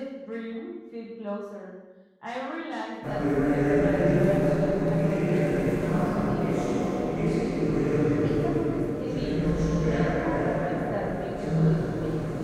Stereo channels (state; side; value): identical; both; correlation 1.00